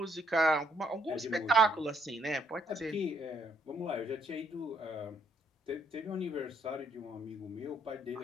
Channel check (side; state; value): both; normal; correlation 0.69